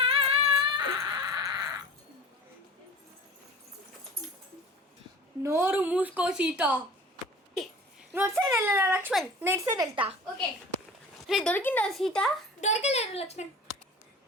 నోరు మూసుకో సీత. నువ్వు అటు సైడ్ వెళ్ళా లక్ష్మణ్, నేను ఇటు సైడ్ వెళ్తా. ఓకే. రే దొరికిందా సీత? దొరకలేదు లక్ష్మణ్.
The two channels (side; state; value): both; normal; correlation 0.40